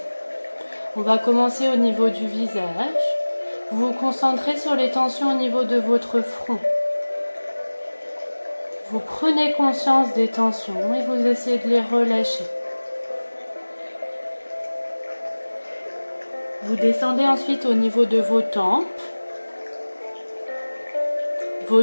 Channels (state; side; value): inverted; both; correlation -1.00